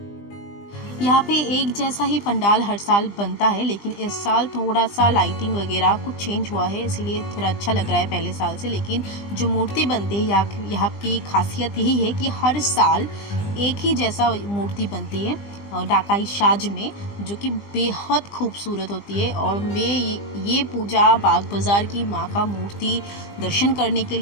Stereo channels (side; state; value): right; late; 20 ms